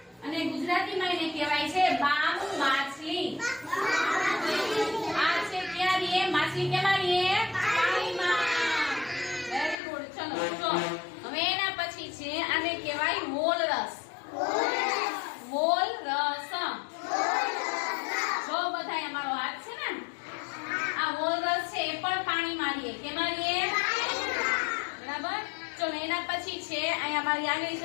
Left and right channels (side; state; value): right; drops out; at 9.8 s